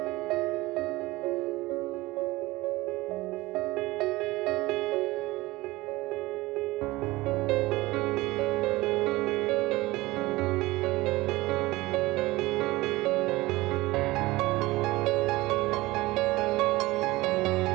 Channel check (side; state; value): left; quieter; 19.9 dB